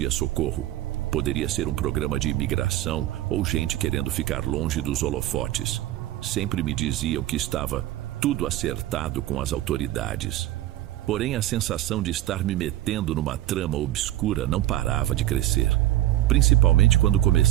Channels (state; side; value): quieter; left; 14.6 dB